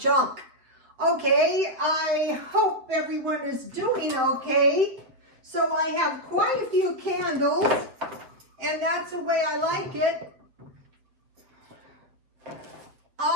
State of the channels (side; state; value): left; late; 7.8 ms